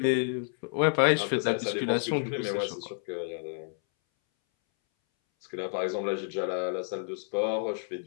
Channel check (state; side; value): silent; right; 58 dB below the other